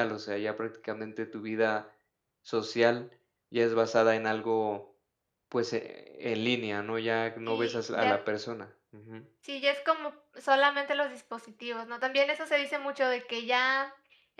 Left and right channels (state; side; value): identical; both; correlation 1.00